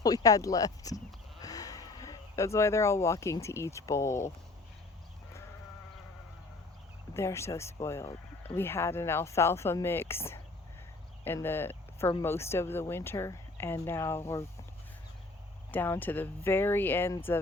we had left. That's why they're all walking to each bowl. They're so spoiled. We had an alfalfa mix for most of the winter, and now we're down to the very ends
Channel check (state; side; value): quieter; right; 3.3 dB